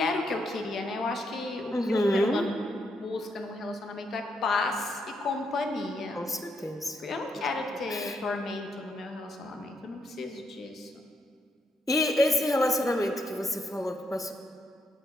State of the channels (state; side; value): normal; both; correlation 0.78